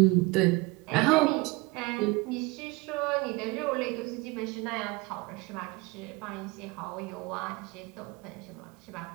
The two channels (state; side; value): quieter; left; 24.2 dB